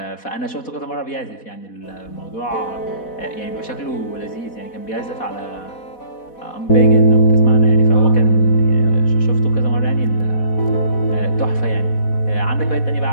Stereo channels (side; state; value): right; late; 4.1 ms